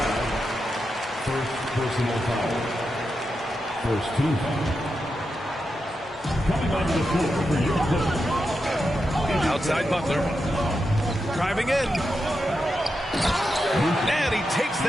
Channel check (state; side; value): normal; both; correlation 0.87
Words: first personal foul. First team foul. Coming onto the floor for your Clippers. Outside Butler. Driving in. And he takes